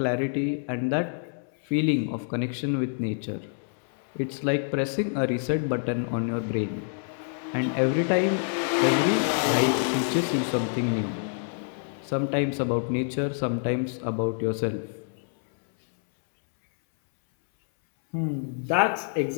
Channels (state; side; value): silent; right; 60 dB below the other